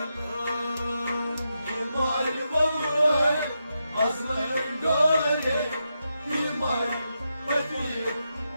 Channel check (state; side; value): inverted; both; correlation -0.86